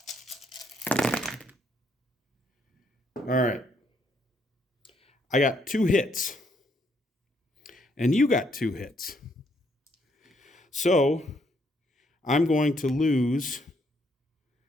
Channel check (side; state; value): both; normal; correlation 0.72